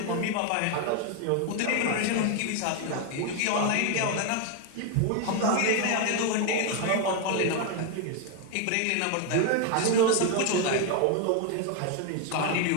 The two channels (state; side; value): different; both; correlation 0.01